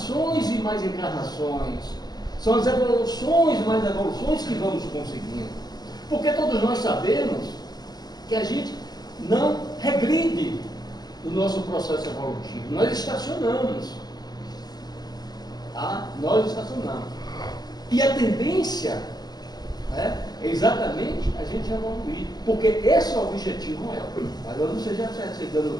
e mais encarnações. São as evoluções e mais evoluções que vamos conseguindo. Porque todos nós sabemos que a gente não regride no nosso processo evolutivo. Nós estacionamos. Tá? Nós estacionamos. E a tendência é exatamente a gente evoluir. Porque esse é o objetivo maior. Mas eu não sei já aceitando o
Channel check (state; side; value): late; right; 0.19 ms